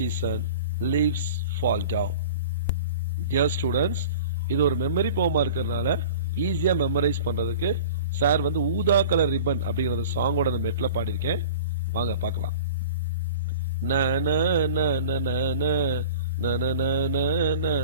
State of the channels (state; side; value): inverted; both; correlation -0.40